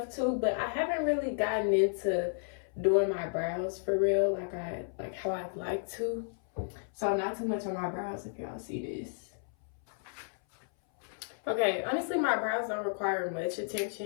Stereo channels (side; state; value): right; silent; 56 dB below the other